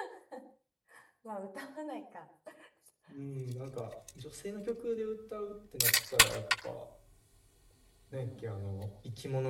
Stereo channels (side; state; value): both; identical; correlation 1.00